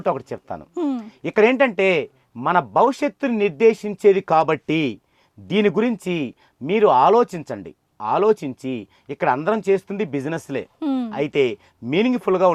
ఒకటి చెప్తాను. ఇక్కడ ఏంటంటే మన భవిష్యత్తుని నిర్దేశించేది కాబట్టి దీని గురించి మీరు ఆలోచించి ఇక్కడ అందరం చేస్తుంది బిజినెస్లే, అయితే మీనింగ్ఫుల్గా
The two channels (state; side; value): identical; both; correlation 1.00